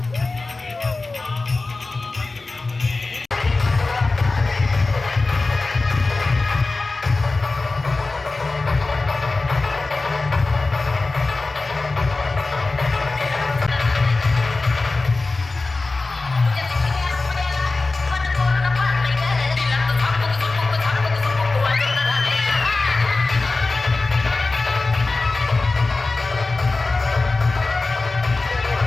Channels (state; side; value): quieter; right; 3.5 dB